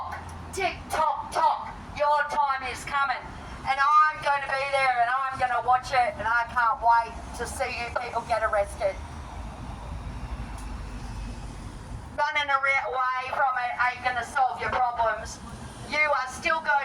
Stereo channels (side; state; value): both; identical; correlation 1.00